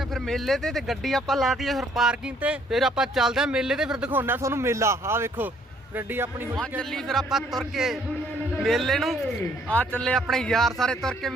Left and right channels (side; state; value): both; normal; correlation 0.64